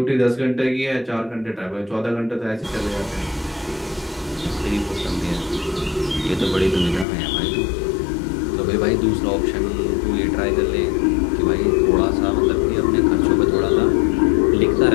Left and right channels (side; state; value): right; drops out; at 7.1 s